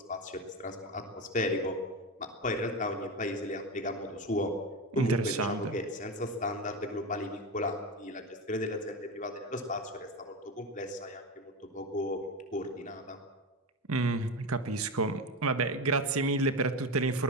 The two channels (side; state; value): both; normal; correlation 0.19